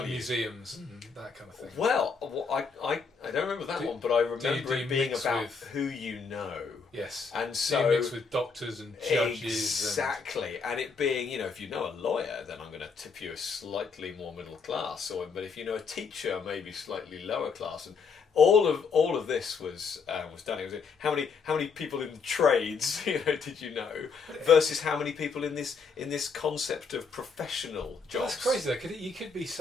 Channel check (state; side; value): quieter; right; 5.2 dB